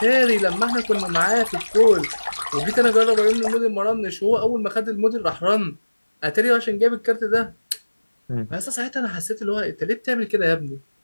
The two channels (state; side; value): inverted; both; correlation -1.00